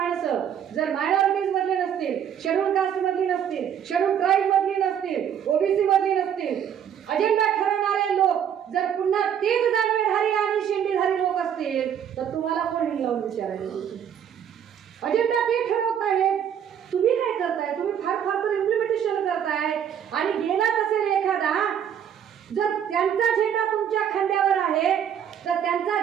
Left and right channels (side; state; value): left; quieter; 8.9 dB